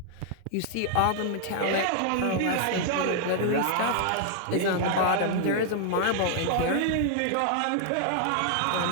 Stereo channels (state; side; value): different; both; correlation 0.00